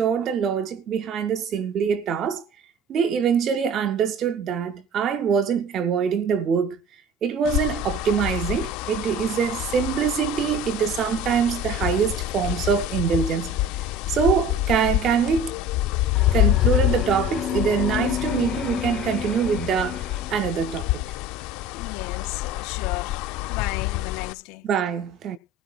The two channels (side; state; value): both; normal; correlation 0.41